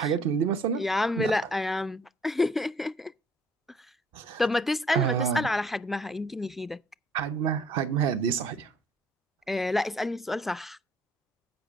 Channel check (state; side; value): normal; both; correlation 0.59